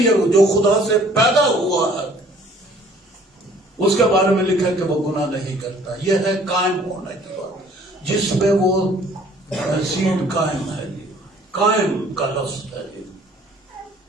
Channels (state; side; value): normal; both; correlation 0.56